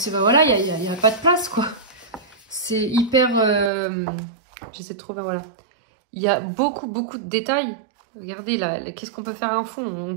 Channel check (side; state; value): left; drops out; at 3.7 s